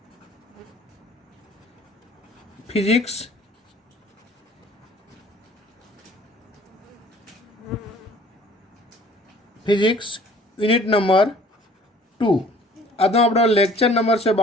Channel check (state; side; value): normal; both; correlation 0.53